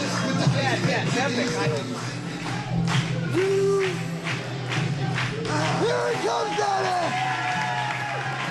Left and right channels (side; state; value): both; identical; correlation 1.00